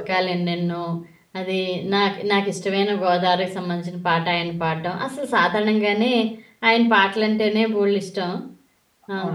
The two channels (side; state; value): both; identical; correlation 1.00